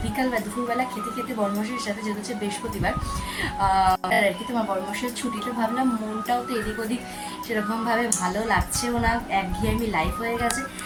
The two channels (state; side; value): identical; both; correlation 1.00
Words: বিকাল বা দুপুরবেলা খেতে খেতে বর্মশের সাথে, যেহেতু হচ্ছে বৃহস্পতিবার আর কি তোমার বর্মশের ছুটিটা, ভাবলাম মনটাও তো এদিক ওদিক সেরকমভাবে ভালো লাগছেও না, একঘেয়েমি লাইফ হয়ে গেছে।